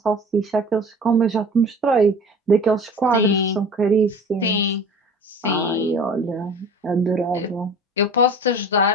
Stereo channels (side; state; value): both; normal; correlation 0.41